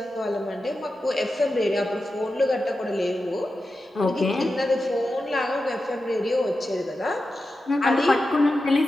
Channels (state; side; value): normal; both; correlation 0.91